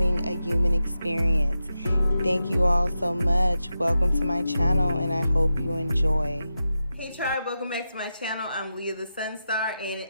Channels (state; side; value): inverted; both; correlation -0.90